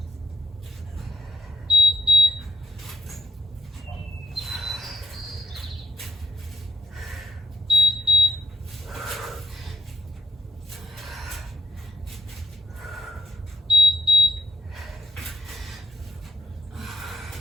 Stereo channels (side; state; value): both; normal; correlation 0.72